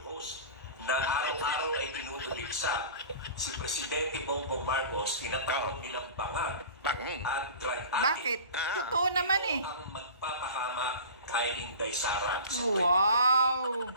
host na araw-araw ay tinutuligsa si Presidente Bongbong Marcos, tinatawag nilang bangag at drug addict. Bakit? Totoo naman eh. Ang magpapahama kay Inday Sara. Wow!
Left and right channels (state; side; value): inverted; both; correlation -0.38